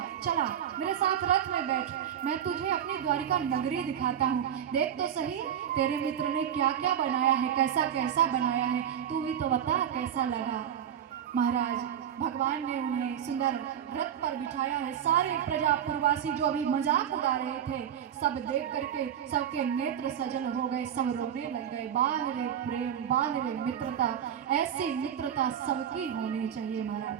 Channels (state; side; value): quieter; left; 9.4 dB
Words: चला मेरे साथ रथ में बैठ, मैं तुझे अपनी द्वारिका नगरी दिखाता हूँ। देख तो सही तेरे मित्र ने क्या क्या बनाया है, कैसा कैसा बनाया है, तू भी तो बता कैसा लगा। महाराज भगवान ने उन्हें सुंदर रथ पर बिठाया है। सारे प्रजापुरवासी जो अभी मजाक उड़ा रहे थे, सब देख करके सबके नेत्र सजल हो गए, सब रोने लग गए। बाल रे प्रेम, बाल रे मित्रता, ऐसी मित्रता सबकी होनी चाहिए।